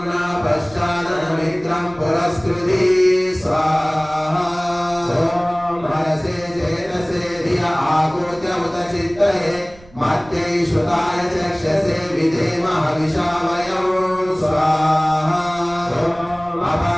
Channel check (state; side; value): noise; right; rumble, 23 dB below the sound